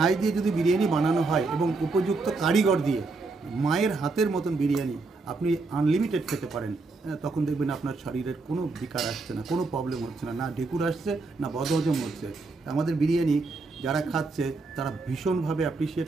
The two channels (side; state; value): left; quieter; 3.8 dB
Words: দিয়ে যদি বিরিয়ানি বানানো হয় এবং উপযুক্ত কারিগর দিয়ে, মায়ের হাতের মতন বিরিয়ানি আপনি আনলিমিটেড খেতে পারেন, তখন দেখবেন আপনার শরীরের কোনো বিকার আসছে না, কোনো প্রবলেম হচ্ছে না, না ঢেকুর আসছে, না বদহজম হচ্ছে। আমাদের বিরিয়ানি যারা খাচ্ছে তারা ভীষণভাবে অ্যাপ্রিসিয়েট